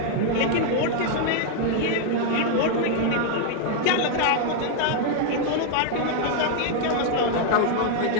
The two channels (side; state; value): both; different; correlation 0.00